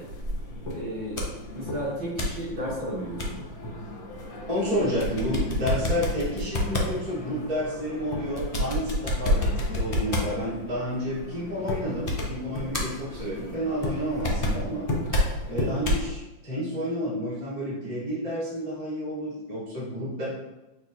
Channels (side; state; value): left; late; 5.7 ms